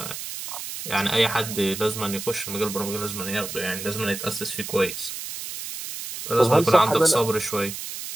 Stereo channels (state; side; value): noise; right; hiss, 8 dB below the sound